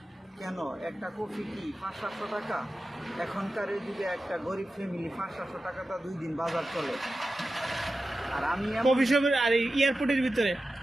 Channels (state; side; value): normal; both; correlation 0.93